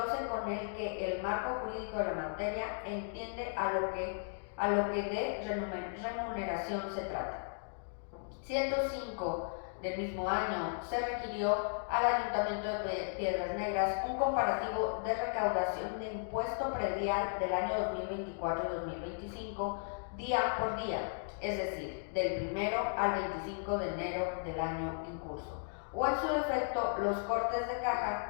con el que el marco jurídico de la materia entiende a lo que de remuneración se trata. 105. Del mismo año, se requirió al Ayuntamiento de Piedras Negras un comparativo de recaudación de impuesto predial del año 2024 y 2025, día por día, es decir, del 1 al 25 de enero del año en curso, o en su defecto los cortes de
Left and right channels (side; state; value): right; silent; digital silence